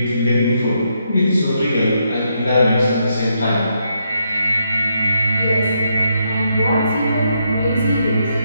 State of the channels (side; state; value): both; inverted; correlation -0.78